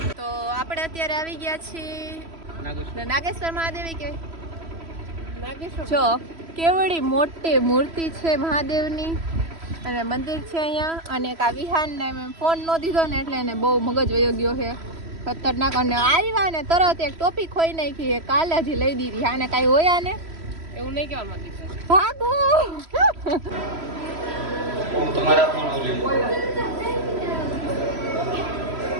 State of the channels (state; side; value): late; left; 3.0 ms